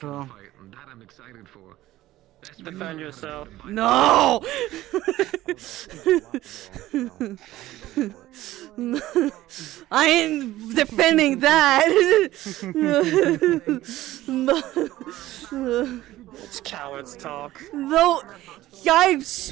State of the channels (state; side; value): quieter; left; 15.7 dB